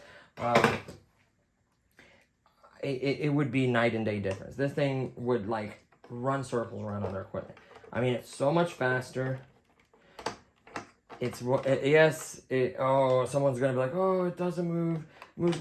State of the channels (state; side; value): identical; both; correlation 1.00